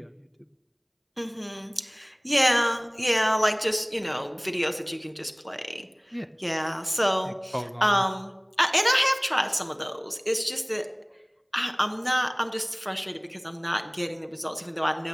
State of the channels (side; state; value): both; identical; correlation 1.00